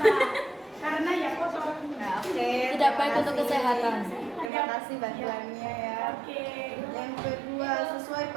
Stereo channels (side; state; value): left; drops out; at 4.5 s